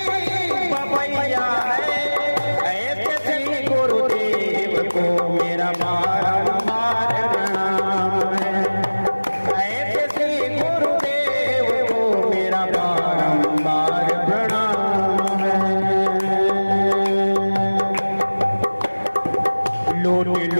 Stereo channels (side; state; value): both; inverted; correlation -1.00